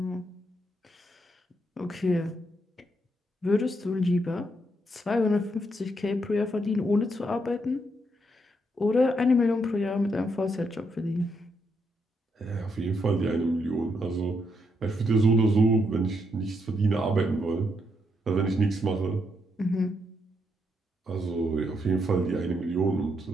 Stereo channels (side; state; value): both; normal; correlation 0.78